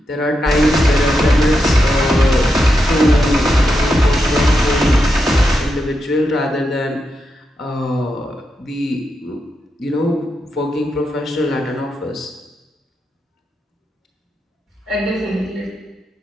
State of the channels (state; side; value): normal; both; correlation 0.85